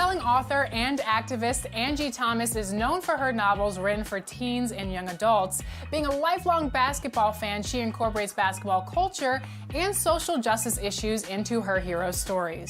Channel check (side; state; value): both; identical; correlation 1.00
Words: author and activist Angie Thomas is known for her novels written for teens and young adults. Being a lifelong basketball fan, she incorporates basketball culture and social justice issues into her hero